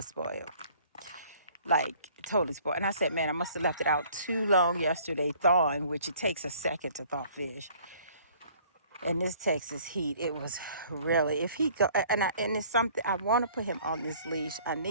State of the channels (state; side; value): inverted; both; correlation -0.56